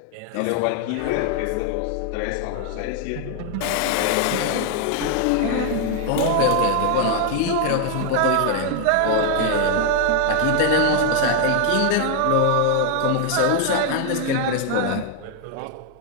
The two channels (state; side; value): different; both; correlation 0.00